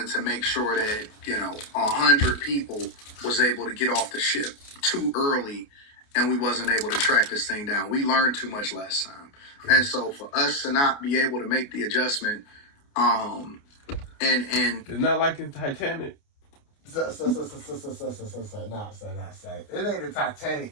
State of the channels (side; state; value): right; late; 28 ms